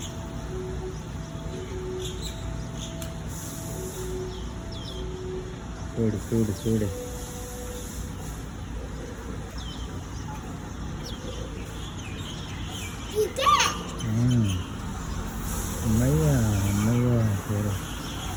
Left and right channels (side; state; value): both; identical; correlation 1.00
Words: చూడు చూడు చూడు అమ్మయ్యా అమ్మయ్యా చూడు